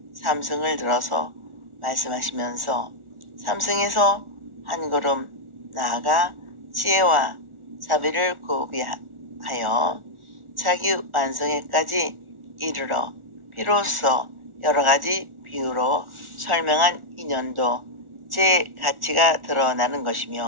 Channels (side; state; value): left; late; 1.4 ms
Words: 삼승을 들어서 말씀하시면서 삼승에서 한 걸음 나아가 지혜와 사비를 구비하여 자기 완성에까지 이르러 비로소 여러가지 비유로 설명한 인연도 제 가치가 드러나는